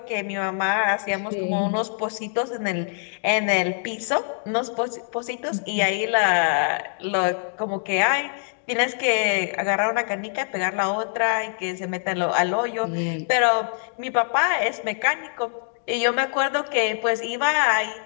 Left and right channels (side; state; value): right; silent; 63 dB below the other